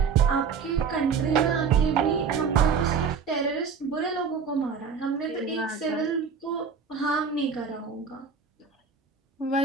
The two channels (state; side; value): quieter; left; 5.9 dB